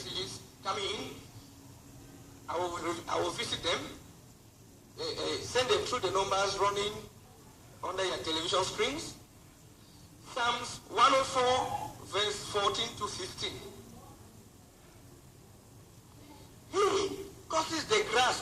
coming in. I will visit them. Send them through the numbers running under your television screens. Psalms 104, verse 14 to 15. He causes the grass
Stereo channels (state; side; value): identical; both; correlation 1.00